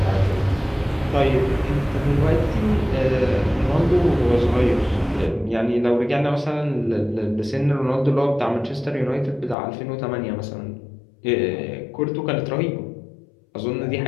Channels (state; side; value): drops out; right; at 9.6 s